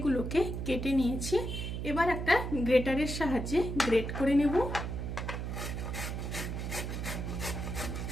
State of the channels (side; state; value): right; noise; hum, 4 dB below the sound